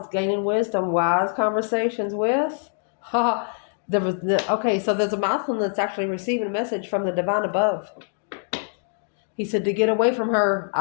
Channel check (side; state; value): right; silent; 63 dB below the other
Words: gaining wisdom, wise conversations with. Okay, so there's a masculine that's actually receiving a message from the divine above. He said, to get away from her,